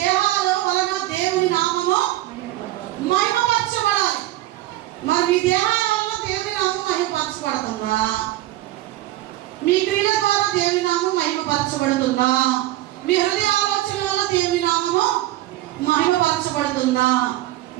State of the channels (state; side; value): quieter; left; 15.7 dB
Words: వలన దేవుని నామము మహిమపరచబడాలి. మరి మీ దేహాల వలన దేవుని నామం మహిమపరచబడుతుందా? మీ క్రియల ద్వారా దేవుని నామం మహిమపరచబడుతుందా? మీ హృదయ ఆలోచన వల్ల దేవుని నామము మహిమపరచబడుతుందా?